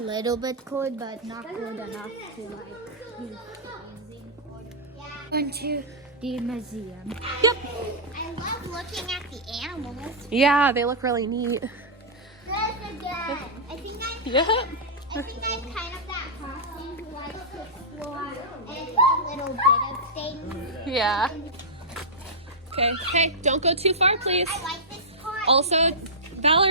bit cold, but not cold enough to like be freezing. Into the museum. yep. I love looking at the animals. Yeah, they look really neat. I think Yep. I'm kind of that person who likes to explore and a little bit of things. Yeah. Okay, hey, don't go too far, please. I like this part. Also,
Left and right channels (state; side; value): normal; both; correlation -0.12